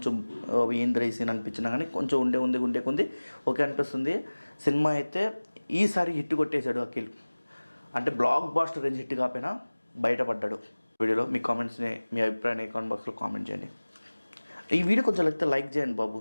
ఏంద్ర ఈ సీన్ అనిపించినా కానీ కొంచెం ఉండే కొంది ఓకే అనిపిస్తుంది. సినిమా అయితే ఈసారి హిట్ కొట్టేశాడు అఖిల్. అంటే బ్లాక్ బాస్టర్ రేంజ్ హిట్ కాకపోయినా బయటపడ్డాడు. వీడియోలో మీ కామెంట్స్ని, మీ అభిప్రాయాన్ని కామెంట్ బాక్స్లో కామెంట్ చేయండి. ఈ వీడియో కొంచెం లైక్ చేయండి బాబు,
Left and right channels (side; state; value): both; inverted; correlation -1.00